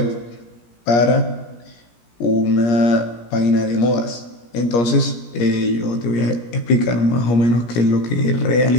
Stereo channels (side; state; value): right; late; 17 ms